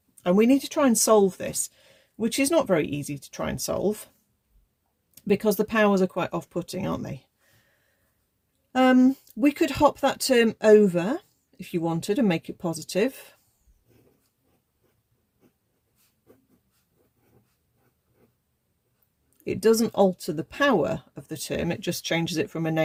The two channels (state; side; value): identical; both; correlation 1.00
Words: And we need to try and solve this, which is not very easy to try and solve because the powers are quite off-putting, aren't they? We could hop that term over if you wanted and make it positive. It doesn't alter the power of the term, it just changes it from a